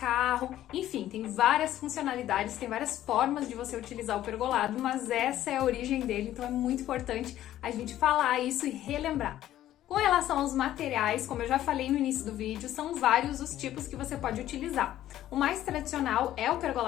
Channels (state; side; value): quieter; right; 13.0 dB